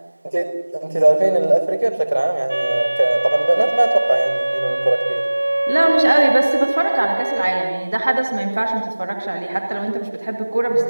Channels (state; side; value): inverted; both; correlation -1.00